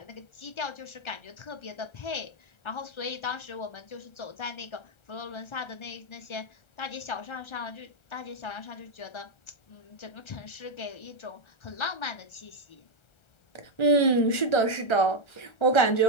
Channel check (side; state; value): right; late; 1.3 ms